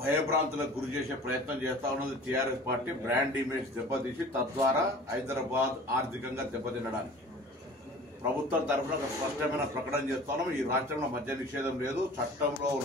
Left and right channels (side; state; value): both; normal; correlation 0.43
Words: గురి చేసే ప్రయత్నం చేస్తా ఉన్నది టీఆర్ఎస్ పార్టీ. బ్రాండ్ ఇమేజ్ దెబ్బతీసి తద్వారా హైదరాబాద్ ఆర్థికంగా దెబ్బతినడానికి ప్రభుత్వం తరఫున ఒక స్పష్టమైన ప్రకటన చేస్తున్నాం. ఈ రాష్ట్రంలో మద్య నిషేధం లేదు. చట్టంలో